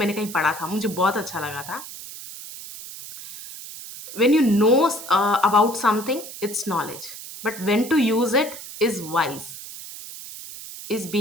कहीं पढ़ा था, मुझे बहुत अच्छा लगा था। When you know about something, it's knowledge, but when to use it is wise, is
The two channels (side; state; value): right; noise; hiss, 13 dB below the sound